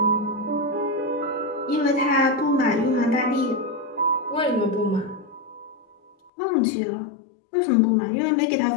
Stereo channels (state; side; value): drops out; right; at 6.3 s